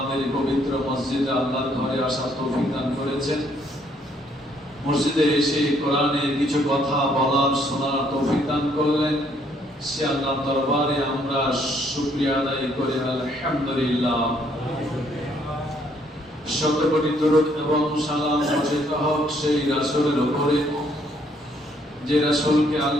পবিত্র মসজিদে আল্লাহর ঘরে আসার তৌফিক দান করেছেন। মসজিদে এসে কোরআনের কিছু কথা বলার শোনার তৌফিক দান করলেন। সে আল্লাহর দরবারে আমরা শুকরিয়া আদায় করি আলহামদুলিল্লাহ। শত কোটি দরুদ এবং সালাম বর্ষিত হোক সেই রাসূলের উপরে, যে রাসূলকে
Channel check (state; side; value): normal; both; correlation 0.67